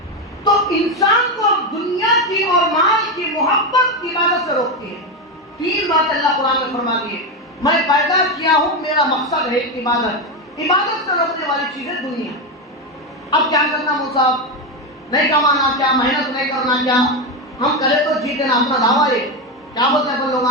تو انسان کو دنیا کی اور مال کی محبت کی عبادت سے روکتی ہے. 3 بات اللہ قرآن میں فرما دی ہے. میں پیدا کیا ہوں، میرا مقصد ہے عبادت. عبادت سے روکنے والی چیز ہے دنیا. اب کیا کرنا موسیٰ؟ نہیں کمانا کیا؟ محنت نہیں کرنا کیا؟ ہم کرے تو جیتے نا، اپنا دعویٰ ہے. کیا بولتے ہیں لوگ؟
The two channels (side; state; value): both; normal; correlation 0.11